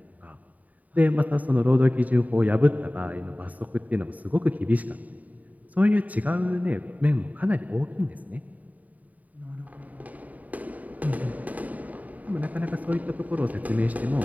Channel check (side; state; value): left; late; 0.073 ms